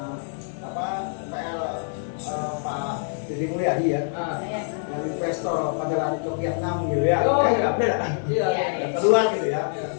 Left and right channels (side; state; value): right; silent; digital silence